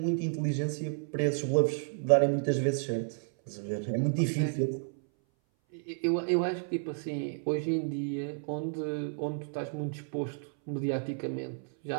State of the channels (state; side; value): silent; left; 57 dB below the other